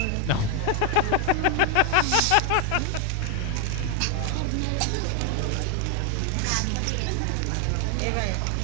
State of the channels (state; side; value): different; both; correlation 0.01